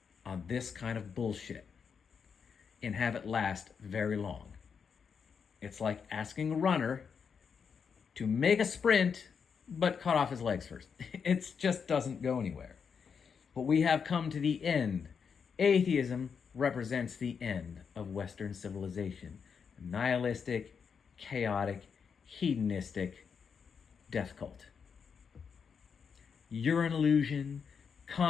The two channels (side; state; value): right; quieter; 6.4 dB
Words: on this kind of bullshit and have it last very long. It's like asking a runner to make a sprint, but cut off his legs first. It just doesn't go anywhere. But we have come to the end. Atheism represents the end of Western civilization. A nihilistic, chaotic, hedonistic death cult. You're an illusion.